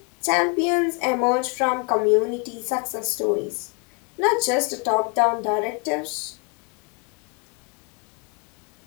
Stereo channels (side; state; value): right; quieter; 32.5 dB